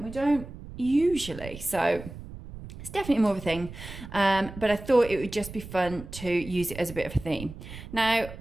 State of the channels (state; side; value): noise; right; rumble, 13 dB below the sound